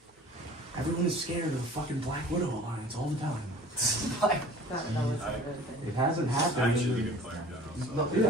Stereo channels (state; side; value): normal; both; correlation 0.46